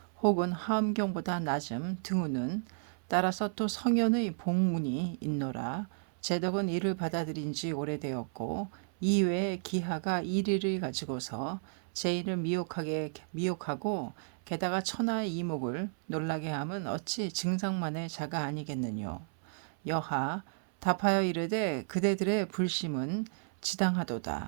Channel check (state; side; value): silent; left; 56 dB below the other